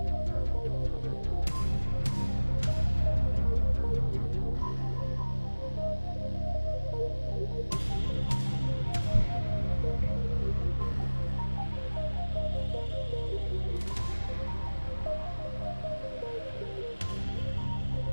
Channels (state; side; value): inverted; both; correlation -1.00